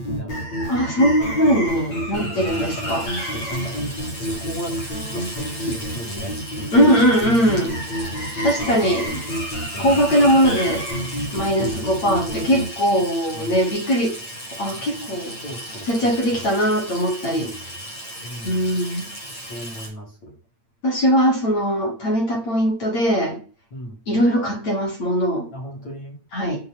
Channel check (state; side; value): late; right; 8.8 ms